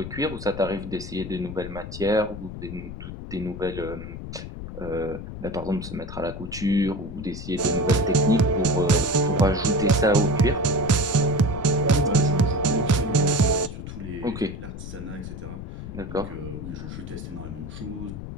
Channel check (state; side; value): noise; left; rumble, 9 dB below the sound